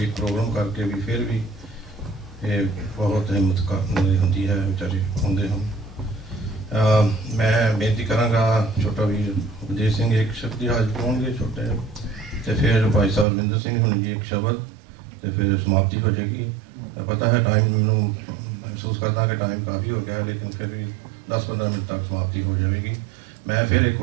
ਪ੍ਰੋਗਰਾਮ ਕਰਕੇ ਵੀ ਫਿਰ ਵੀ ਇਹ ਬਹੁਤ ਹਿੰਮਤ ਹੁੰਦੀ ਹੈ, ਵਿਚਾਰੇ ਆਉਂਦੇ ਹਨ। ਮੈਂ ਬੇਨਤੀ ਕਰਾਂਗਾ ਛੋਟਾ ਵੀਰ ਉਪਦੇਸ਼ ਸਿੰਘ ਇੱਕ ਸ਼ਬਦ ਹਾਜ਼ਰ ਪਾਉਣਗੇ ਛੋਟੇ, ਅਤੇ ਫਿਰ ਭਾਈ ਸਾਹਿਬ ਰਵਿੰਦਰ ਸਿੰਘ ਹੁਣ ਜੀ ਇੱਕ ਸ਼ਬਦ, ਅਤੇ ਫਿਰ ਸਮਾਪਤੀ ਹੋ ਜਾਏਗੀ। ਪਤਾ ਹੈ ਟਾਈਮ ਮੈਨੂੰ ਮਹਿਸੂਸ ਕਰਦਾ ਕਿ ਟਾਈਮ ਕਾਫੀ ਹੋ ਗਿਆ, ਲੇਕਿਨ ਫਿਰ ਵੀ 10-15 ਮਿੰਟ ਤੱਕ ਸਮਾਪਤੀ ਹੋ ਜਾਵੇਗੀ। ਮੈਂ ਫਿਰ ਇੱਕ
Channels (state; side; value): drops out; left; at 13.2 s